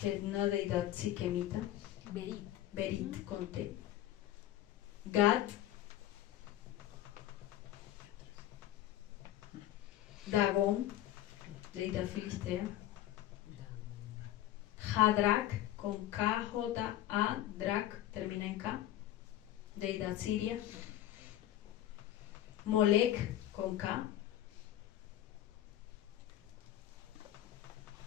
es una deidad siquemita, Berit con T, Gad, Dagón, deidad filistea, Hadrak con K, J, A, Drak, termina en K, deidad siria, Molek con K,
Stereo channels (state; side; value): quieter; right; 13.4 dB